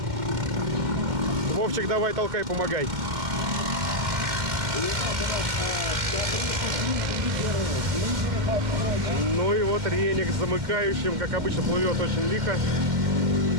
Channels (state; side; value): late; left; 2.1 ms